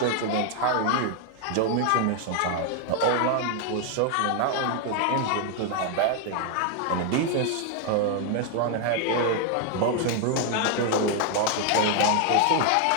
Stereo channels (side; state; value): both; different; correlation 0.01